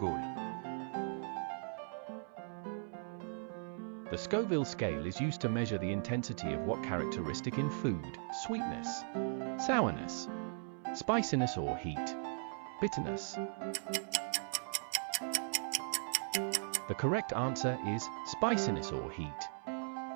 The Scoville scale is used to measure the intensity of what characteristic in food? Sweetness, sourness, spiciness or heat, bitterness. The correct answer is spiciness or heat.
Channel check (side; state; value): left; silent; 52 dB below the other